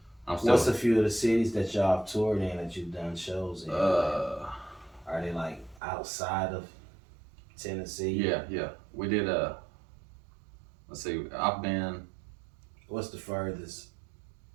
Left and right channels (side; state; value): left; drops out; at 5.8 s